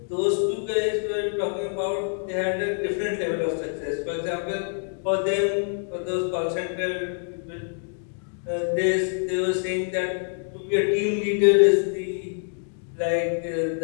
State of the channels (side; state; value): right; silent; 61 dB below the other